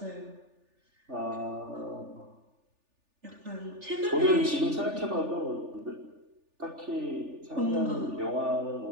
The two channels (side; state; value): left; late; 3.4 ms